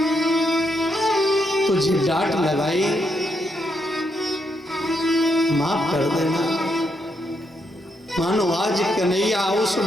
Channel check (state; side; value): normal; both; correlation 0.78